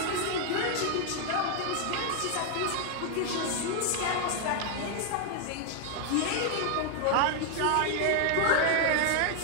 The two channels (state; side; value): different; both; correlation 0.00